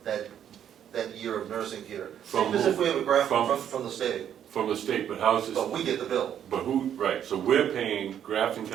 year of nursing care. From Same as if we have a Grafton from- from the state, from the state, but how's this, but we get the bill but who, right, so we're paying Grafton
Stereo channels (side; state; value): left; quieter; 9.6 dB